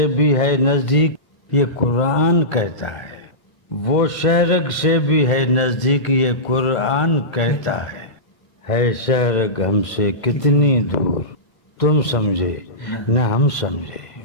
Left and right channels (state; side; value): late; right; 2.0 ms